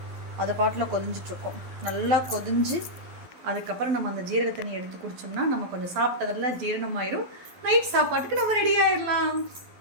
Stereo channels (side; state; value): left; late; 12 ms